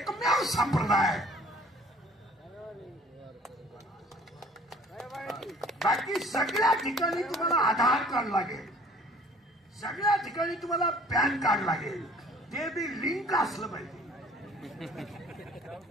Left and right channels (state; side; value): normal; both; correlation 0.52